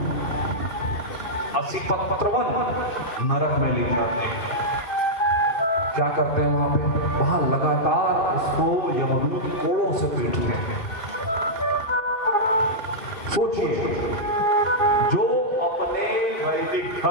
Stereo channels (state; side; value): late; right; 2.5 ms